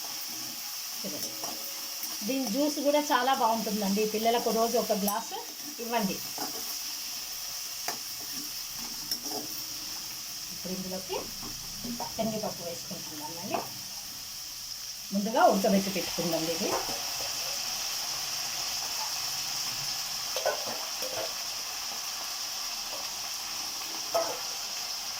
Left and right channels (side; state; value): both; identical; correlation 1.00